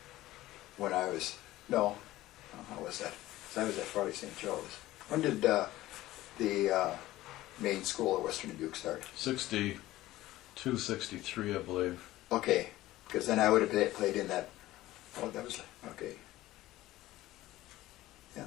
When I was how was that? 'Cause I was at Farley St. Joe's. When did the main school at Western Dubuque start? 62, 63, I believe. Okay, because then I would have played in that. Oh, that was okay. Yeah,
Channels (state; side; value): quieter; right; 16.3 dB